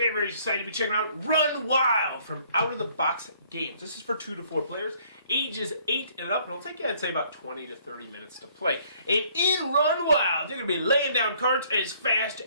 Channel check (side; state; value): both; inverted; correlation -0.62